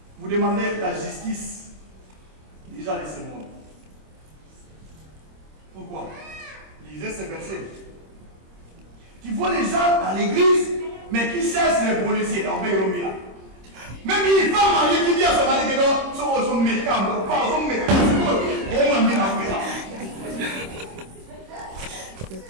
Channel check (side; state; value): left; late; 26 ms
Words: vous demandez la justice déjà de ce monde? Pourquoi? Lisez ce verset. Tu vois les gens dans l'église, mais qui cherchent les policiers dans Beyromia. Même les femmes mariées qui disent à son mari que non, sont médicaments, pas aux médicaments,